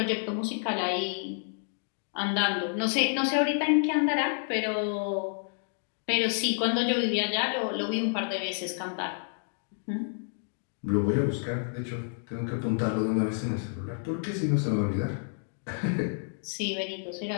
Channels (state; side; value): silent; right; digital silence